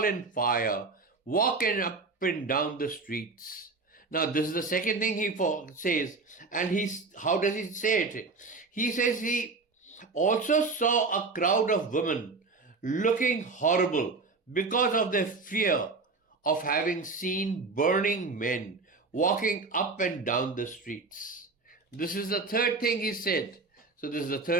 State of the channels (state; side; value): quieter; left; 4.1 dB